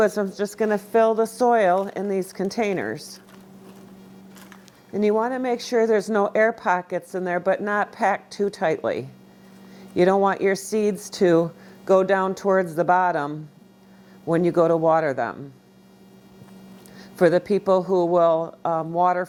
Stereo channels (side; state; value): both; identical; correlation 1.00